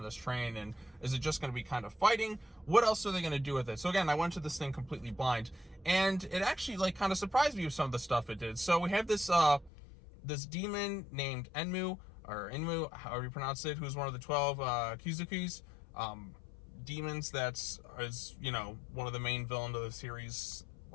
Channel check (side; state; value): right; drops out; at 9.7 s